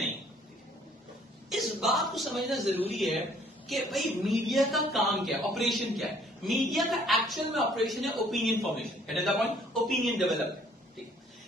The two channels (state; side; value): normal; both; correlation 0.60